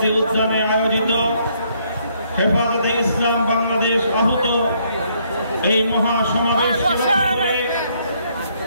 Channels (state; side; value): inverted; both; correlation -0.69